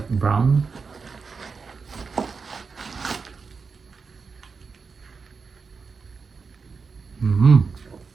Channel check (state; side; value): quieter; left; 5.0 dB